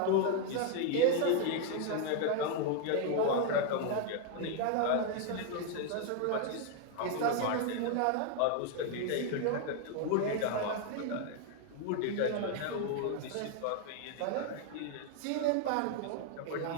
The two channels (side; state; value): both; different; correlation 0.00